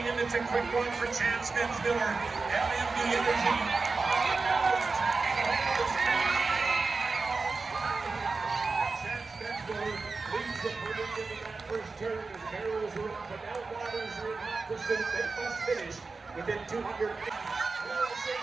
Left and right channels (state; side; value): quieter; left; 4.1 dB